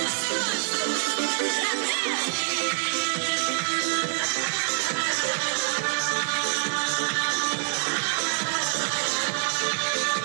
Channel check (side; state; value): left; silent; digital silence